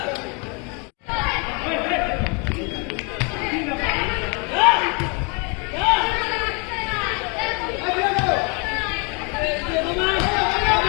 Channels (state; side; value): quieter; right; 33.3 dB